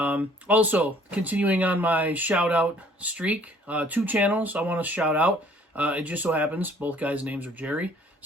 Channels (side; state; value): both; normal; correlation 0.58